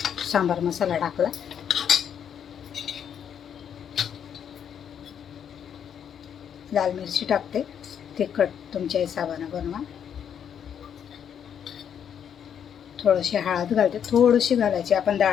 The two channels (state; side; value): quieter; right; 8.5 dB